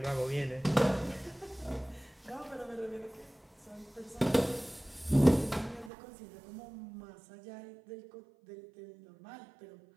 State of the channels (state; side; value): drops out; left; at 5.9 s